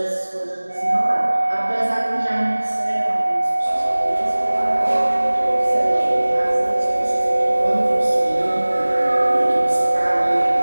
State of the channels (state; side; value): inverted; both; correlation -1.00